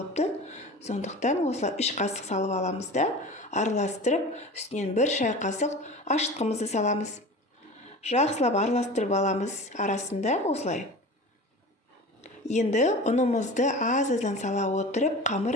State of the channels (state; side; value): normal; both; correlation 0.35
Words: Сондықтан осылай 3 қасық салып аламыз да, араластырып, үстінен 1 шай қасық ашытқымызды саламыз. Жақсылап араластырып аламыз арасында осылай. Енді ұнымызды аз-аздан сала отырып,